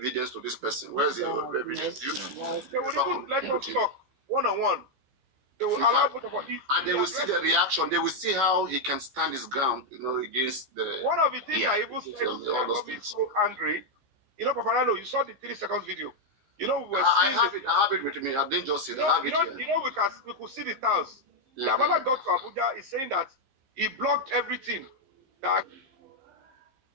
to this person. Where's the evidence? They would even let us talk one-on-one. They will allow both of us. And they will see the reaction. They will see how he can stand his ground, against the. One of the things I even said that got me so angry, Papariano, you saw the 3 seconds video. We were seeing I have it with me. I didn't just see it. I have it here. We could see the tiles. The Damola got to Abuja is saying that he blocked everything. That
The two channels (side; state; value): left; late; 15 ms